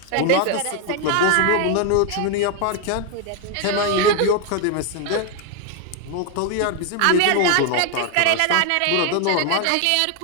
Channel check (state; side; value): different; both; correlation 0.01